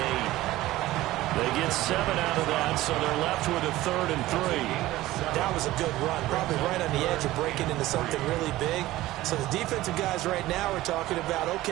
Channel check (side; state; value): left; quieter; 16.6 dB